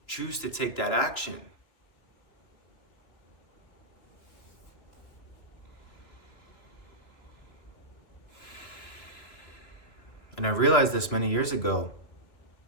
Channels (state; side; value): late; right; 2.7 ms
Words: choose to take that action. And I realized this many years ago,